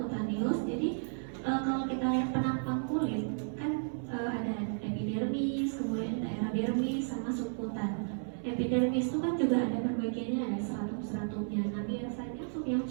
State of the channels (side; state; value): left; silent; digital silence